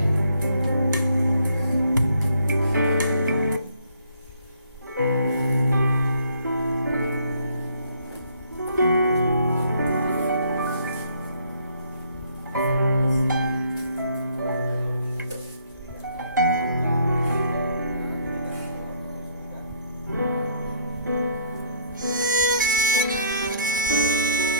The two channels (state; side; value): inverted; both; correlation -0.63